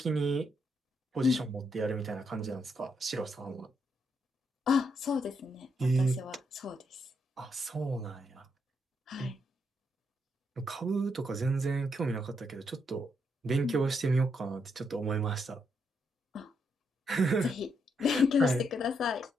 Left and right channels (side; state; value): both; normal; correlation 0.78